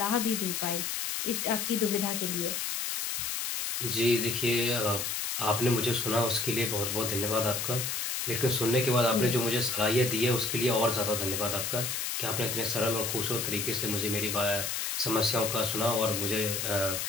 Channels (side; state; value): left; noise; hiss, 2 dB below the sound